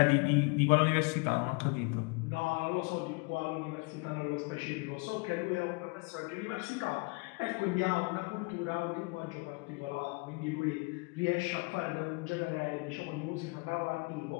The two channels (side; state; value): right; quieter; 29.7 dB